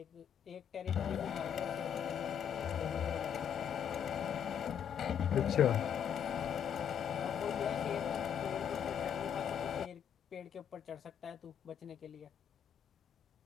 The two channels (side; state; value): right; quieter; 8.5 dB